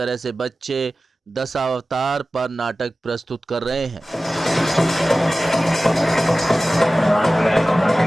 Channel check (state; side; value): normal; both; correlation 0.96